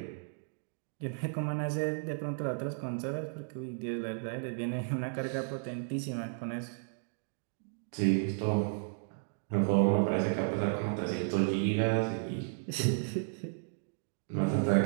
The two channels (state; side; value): silent; left; digital silence